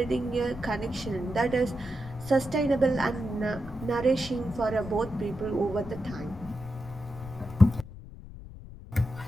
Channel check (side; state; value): left; noise; rumble, 14 dB below the sound